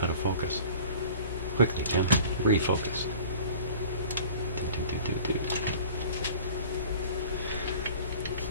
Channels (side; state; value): both; inverted; correlation -0.43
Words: of focus. Quickly, Jim. Refocus.